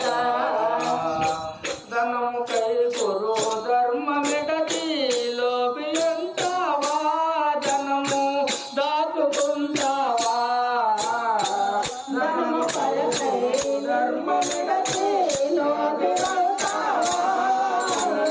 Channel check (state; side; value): identical; both; correlation 1.00